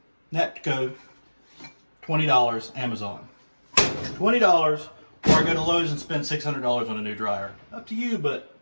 Natco, $20, Amazon. $20, or I go to Lowe's and spend $600 on a new dryer. Up to you, but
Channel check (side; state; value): both; inverted; correlation -1.00